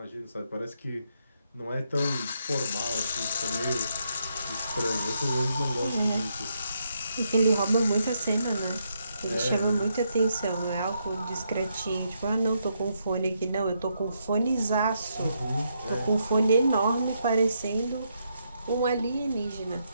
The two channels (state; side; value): inverted; both; correlation -0.78